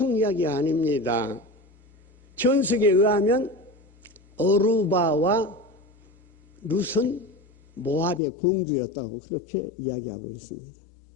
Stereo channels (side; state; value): right; drops out; at 8.2 s